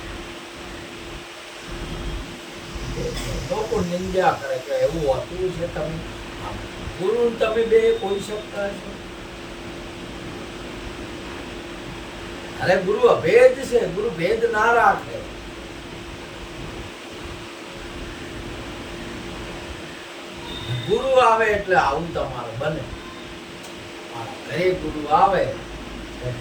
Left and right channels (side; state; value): both; identical; correlation 1.00